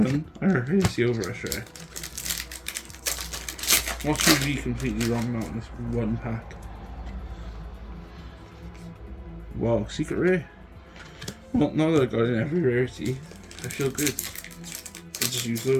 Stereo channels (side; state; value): both; identical; correlation 1.00